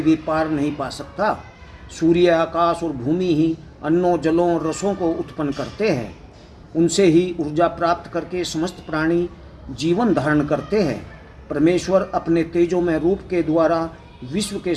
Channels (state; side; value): identical; both; correlation 1.00